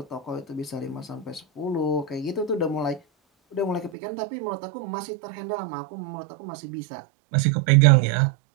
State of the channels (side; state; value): left; drops out; at 3.9 s